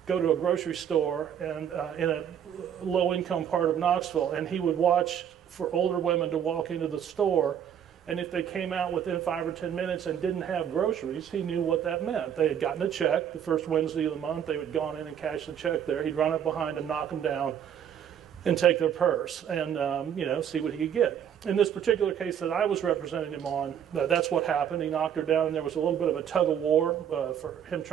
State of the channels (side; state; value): left; quieter; 9.0 dB